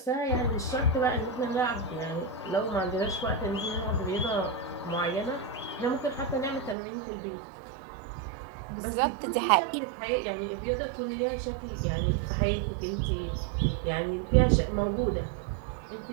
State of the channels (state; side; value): drops out; left; at 6.8 s